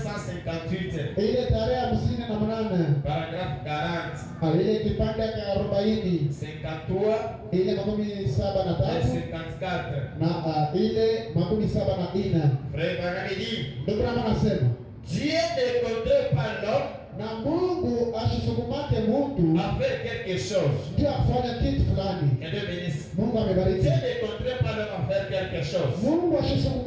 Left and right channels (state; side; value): identical; both; correlation 1.00